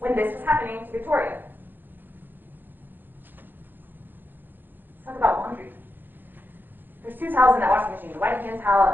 this was happening to Victoria. Let's talk about laundry. There's 2 towels in that washing machine, the white hand towel,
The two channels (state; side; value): late; left; 0.092 ms